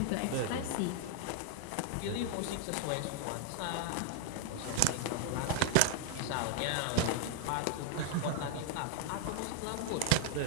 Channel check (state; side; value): different; both; correlation 0.00